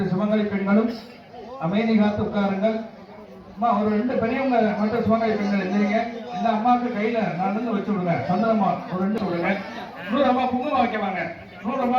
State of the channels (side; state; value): both; identical; correlation 1.00